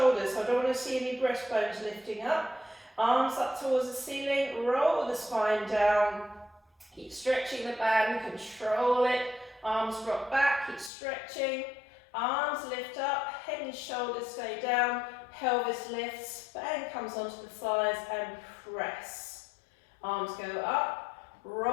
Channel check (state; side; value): drops out; right; at 10.9 s